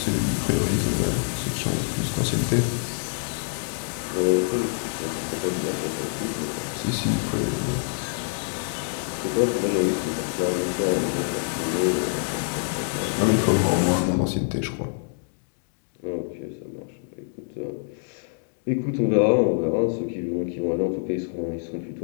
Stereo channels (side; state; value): right; silent; digital silence